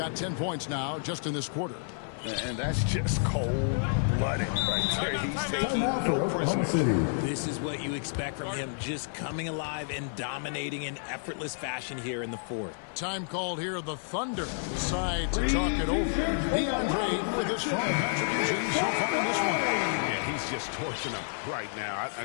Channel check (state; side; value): silent; right; 58 dB below the other